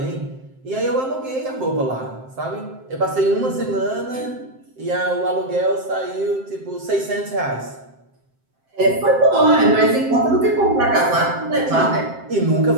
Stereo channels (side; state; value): left; late; 7.6 ms